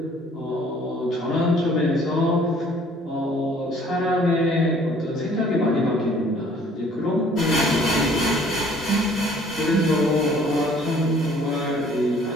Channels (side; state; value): both; normal; correlation 0.57